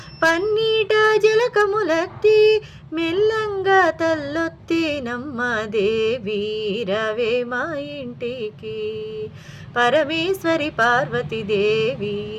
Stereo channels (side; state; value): both; identical; correlation 1.00